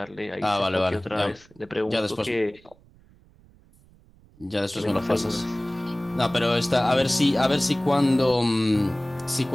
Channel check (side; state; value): right; noise; rumble, 28 dB below the sound